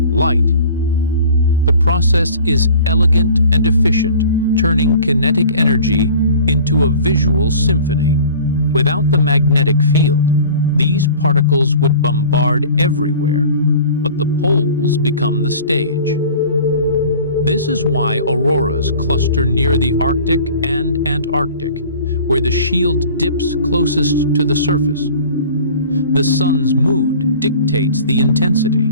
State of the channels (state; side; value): inverted; both; correlation -0.44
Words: light. The process is elegant and efficient, turning kinetic energy into a visual symphony. Without the magnetic field, these particles would bombard everywhere, but the poles become the stage. This is why auroras cluster near the Arctic and Antarctic, where the shield dips closest to the surface. The sun's mood dictates the intensity.